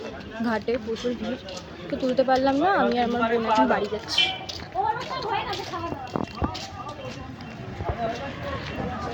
ঘাটে প্রচুর ভিড়, তো তুলতে পারলাম না। আমি আর আমার বোন এখন বাড়ি যাচ্ছি।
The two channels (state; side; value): identical; both; correlation 1.00